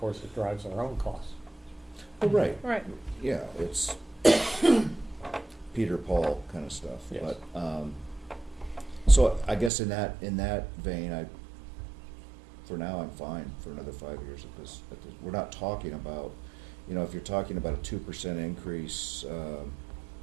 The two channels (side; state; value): left; drops out; at 9.7 s